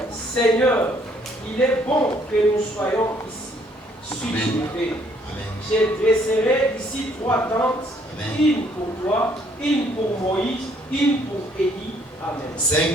Seigneur, il est bon que nous soyons ici. Suis-moi. Je dresserai ici 3 tentes, Amen. Une pour toi, une pour Moïse, une pour Élie. Amen.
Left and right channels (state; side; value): normal; both; correlation 0.65